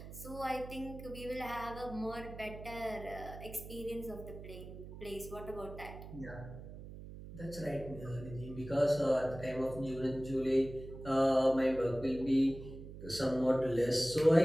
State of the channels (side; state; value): right; noise; hum, 12 dB below the sound